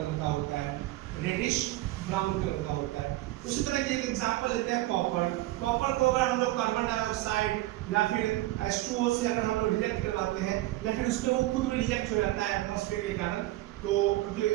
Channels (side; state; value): left; quieter; 17.1 dB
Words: का होता है, रेडिश ब्राउन कलर का होता है। उसी तरह की एक एग्जांपल लेते हैं कॉपर। कॉपर को अगर हम लोग कार्बन डाइऑक्साइड या फिर H2O से अगर हम लोग रिएक्ट करवाते हैं या फिर उसमें वो खुद रिएक्ट हो जाता है एटमॉस्फेयर के कारण, तो क्योंकि